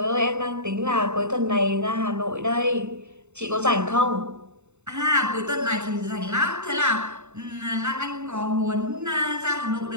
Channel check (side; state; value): left; late; 0.82 ms